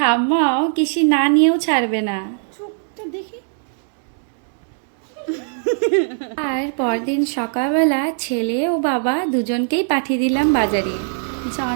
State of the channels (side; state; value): left; silent; digital silence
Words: কিসি না নিয়েও ছাড়বে না। আর পরদিন সকালবেলা ছেলে ও বাবা দুজনকেই পাঠিয়ে দিলাম বাজারে।